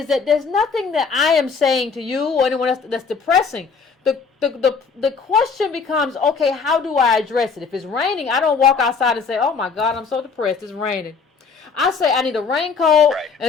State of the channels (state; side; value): quieter; right; 5.3 dB